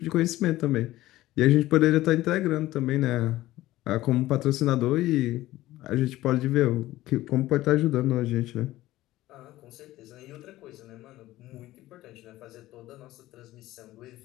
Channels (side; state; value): right; quieter; 16.3 dB